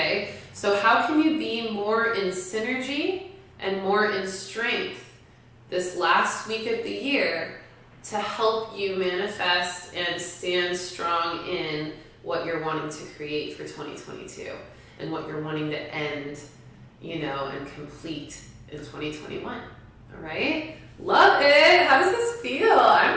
so how can you be more in synergy and more in strength this last week of the year to help you manifest and stand strong in what you're wanting to create for 2022 and what you're wanting to end, and complete in 2021? All right? Love it. How does this feel?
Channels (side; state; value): both; identical; correlation 1.00